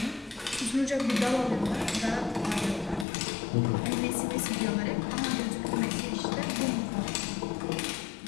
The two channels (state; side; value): drops out; right; at 3.1 s